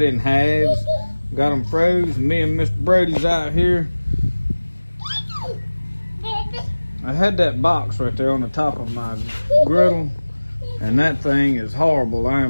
in halves. Got them froze. Me and Mr. Brody's out here. I had that box right there on the top of my griddle, and that thing is horrible. I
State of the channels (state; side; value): inverted; both; correlation -1.00